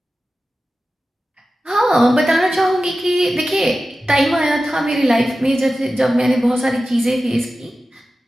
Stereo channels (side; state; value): both; normal; correlation 0.94